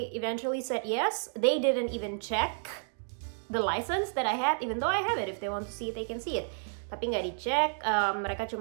eventually said yes. They didn't even check the license that I had, even though I have it. If they want to see it, they can see it. Tapi nggak dicek, mereka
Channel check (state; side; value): silent; left; digital silence